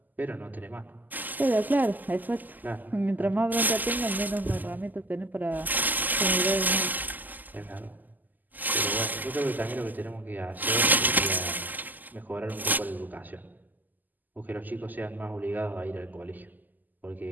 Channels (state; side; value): late; left; 0.085 ms